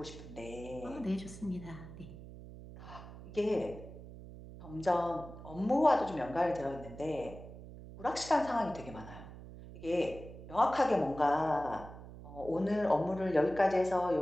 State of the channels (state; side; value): noise; right; hum, 14 dB below the sound